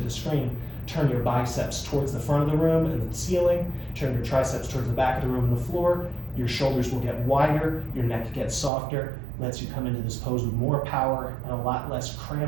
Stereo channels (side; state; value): left; drops out; at 8.7 s